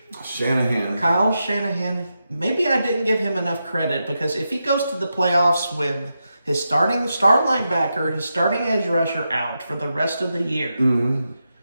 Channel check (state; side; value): inverted; both; correlation -0.87